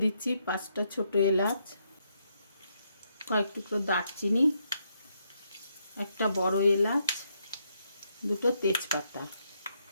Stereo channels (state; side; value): inverted; both; correlation -0.76